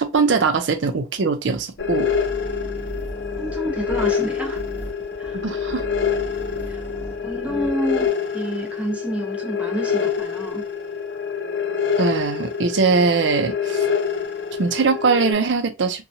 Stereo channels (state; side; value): normal; both; correlation 0.12